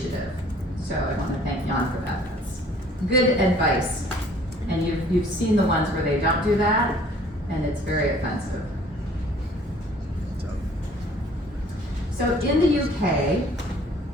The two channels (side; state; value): both; normal; correlation 0.55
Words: So I want to thank Jan for that. That's good advice. And you've seen the ones where they don't do that, and it's very offensive. So in the UK,